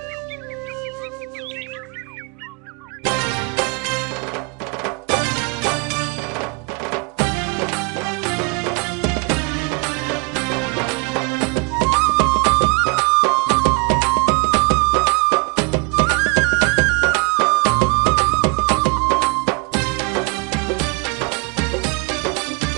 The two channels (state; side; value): quieter; left; 30.8 dB